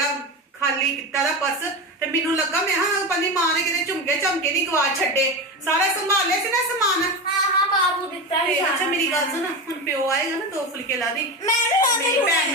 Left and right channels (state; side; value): normal; both; correlation 0.21